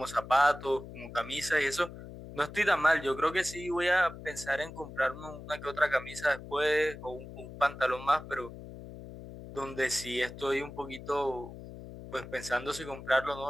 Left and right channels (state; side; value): noise; left; hum, 13 dB below the sound